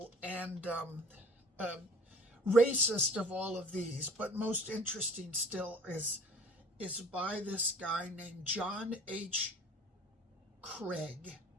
and uh, racist of all of these, but most interesting still is by this guy named John H. Craige.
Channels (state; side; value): normal; both; correlation 0.47